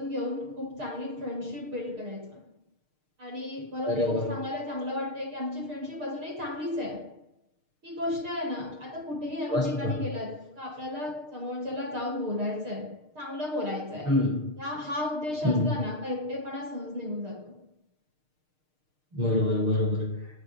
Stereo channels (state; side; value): late; left; 6.5 ms